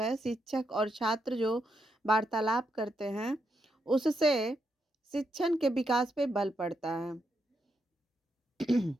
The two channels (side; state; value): both; normal; correlation 0.81